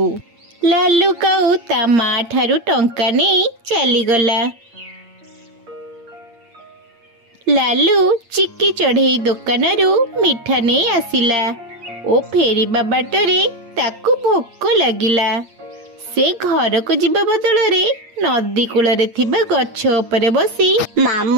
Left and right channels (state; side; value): late; left; 8.7 ms